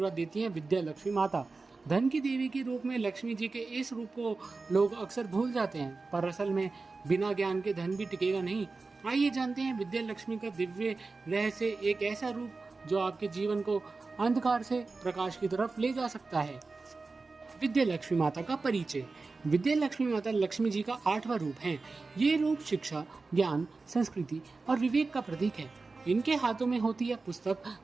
देती हैं विद्या लक्ष्मी माता। धन की देवी के रूप में लक्ष्मी जी के इस रूप को लोग अक्सर भूल जाते हैं, पर असल में बिना ज्ञान के धन भी टिकेगा नहीं। आइए जानते हैं विद्या लक्ष्मी का दिव्य रहस्य, एक ऐसा रूप जो आपके जीवन को अंधकार से प्रकाश की तरफ ले जा सकता है। विद्या लक्ष्मी माता का परिचय। विद्या लक्ष्मी माता लक्ष्मी जी का 8वां रूप है। ये रूप शिक्षा, ज्ञान, संस्कृति और विवेक का प्रतीक है। इनके हाथों में होती है पुस्तक,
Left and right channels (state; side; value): quieter; left; 3.9 dB